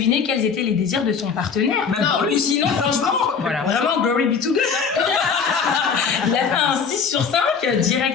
quels étaient les désirs de son partenaire. Non, Ou sinon, franchement, Voilà. vraiment, glory be to God. Il a fait un 6 sur 5,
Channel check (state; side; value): quieter; right; 6.0 dB